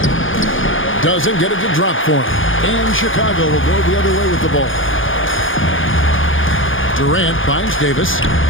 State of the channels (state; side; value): late; right; 0.58 ms